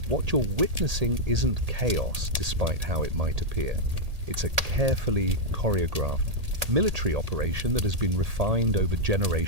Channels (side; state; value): left; late; 1.8 ms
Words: What you're witnessing isn't chaos, despite how it might appear. It's a carefully choreographed military operation that has been refined over